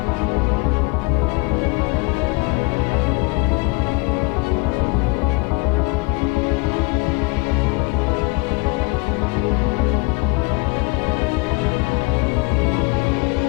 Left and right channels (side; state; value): right; quieter; 27.4 dB